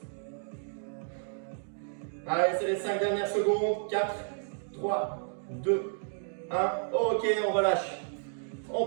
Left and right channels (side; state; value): left; silent; digital silence